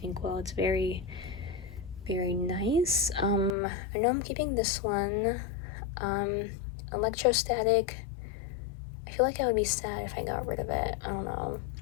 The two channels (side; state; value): right; drops out; at 3.6 s